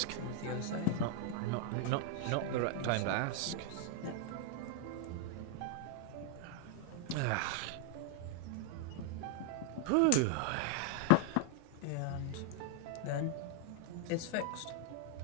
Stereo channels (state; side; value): different; both; correlation 0.00